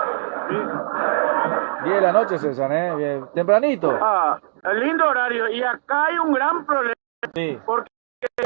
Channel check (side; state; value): left; silent; digital silence